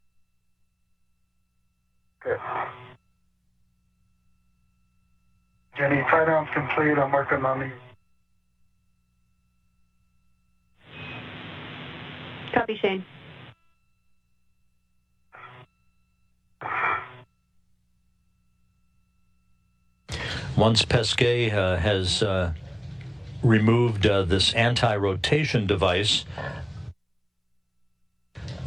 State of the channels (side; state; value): both; identical; correlation 1.00